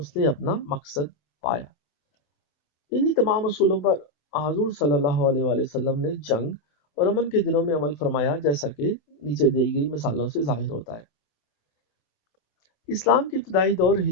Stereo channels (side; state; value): right; late; 27 ms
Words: نے اپنا مقصد پایا۔ انہی تمام اصولوں پر حضور صلی اللہ علیہ وآلہ وسلم نے جنگ اور امن کے دنوں میں عمل فرمایا، جیسا کہ نیچے دی گئی مثالوں سے ظاہر ہوتا ہے۔ اسلام کے ابتدائی دور ہی